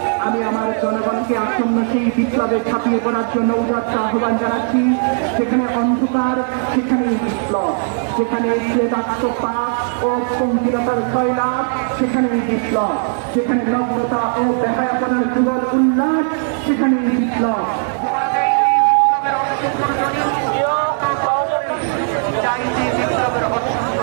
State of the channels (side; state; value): left; silent; 65 dB below the other